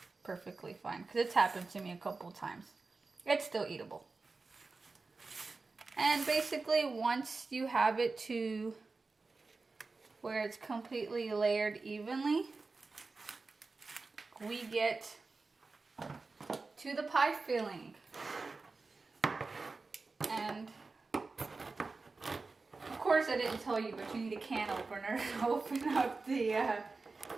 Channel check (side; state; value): left; quieter; 3.9 dB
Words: perfectly fine, because it's happened to me a couple times. It's still eatable. And basically once you have it to where it's completely layered evenly, we get to the pie filling. And of course I didn't tell you, but you need a can opener to open up the